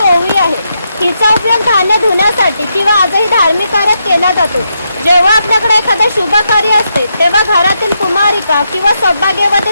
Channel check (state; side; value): inverted; both; correlation -0.82